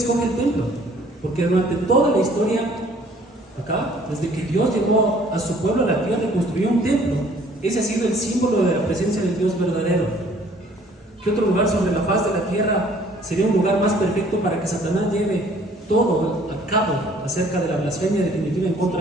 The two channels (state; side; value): normal; both; correlation 0.57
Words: el templo? Porque durante toda la historia, acá, desde que Dios llevó a su pueblo a la tierra y construyó un templo, ese ha sido el símbolo de la presencia del Dios verdadero. ¿Qué otro lugar sobre la faz de la tierra sería un lugar más perfecto para que Satanás lleve todo a cabo acerca de la blasfemia definitiva en